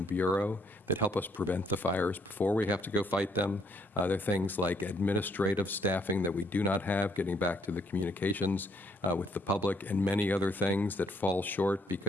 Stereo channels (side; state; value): both; normal; correlation 0.69